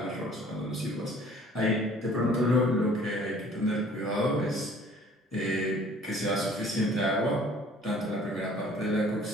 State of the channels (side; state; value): both; normal; correlation 0.53